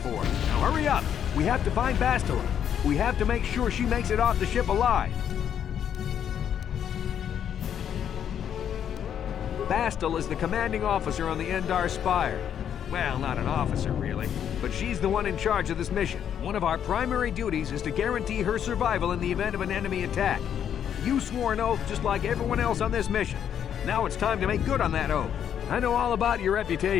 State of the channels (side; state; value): right; quieter; 9.0 dB